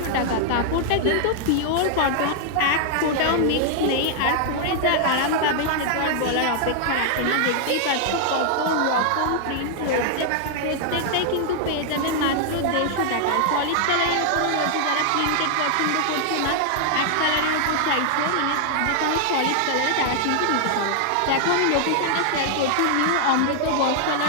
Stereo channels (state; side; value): different; both; correlation -0.01